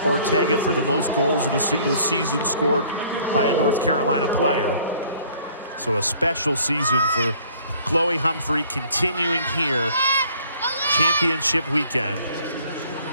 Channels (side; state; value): both; inverted; correlation -0.56